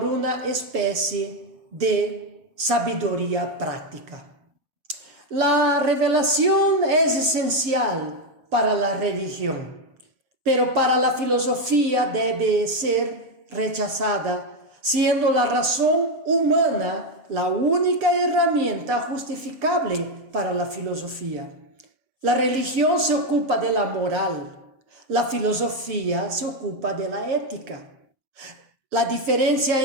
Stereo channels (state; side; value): late; left; 7.2 ms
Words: una especie de sabiduría práctica. La revelación es esencial para la religión, pero para la filosofía debe ser rechazada, siendo la razón humana la única herramienta justificable para la filosofía. La religión se ocupa de la moral, la filosofía se ocupa de la ética. La diferencia